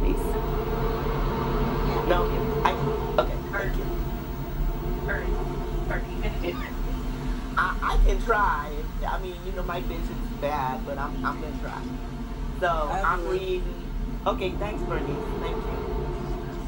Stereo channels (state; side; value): identical; both; correlation 1.00